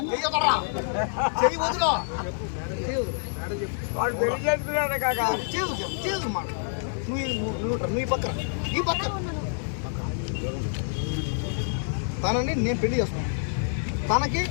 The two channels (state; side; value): silent; right; 60 dB below the other